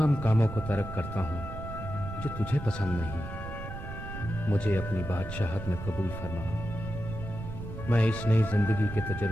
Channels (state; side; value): noise; right; rumble, 9 dB below the sound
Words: کاموں کو ترک کرتا ہوں جو تجھے پسند نہیں. مجھے اپنی بادشاہت میں قبول فرما. میں اس نئی زندگی کے